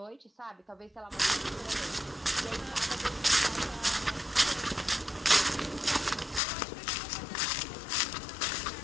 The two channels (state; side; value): drops out; right; at 6.4 s